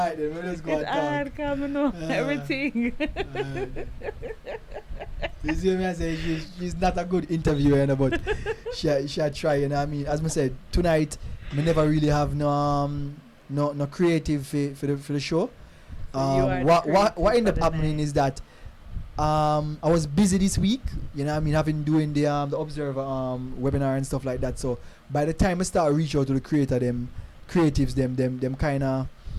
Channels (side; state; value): both; identical; correlation 1.00